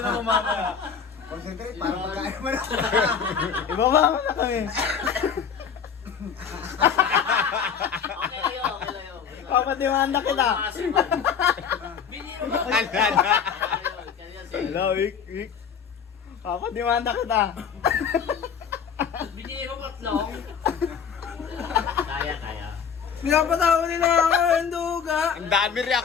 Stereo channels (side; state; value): right; quieter; 7.0 dB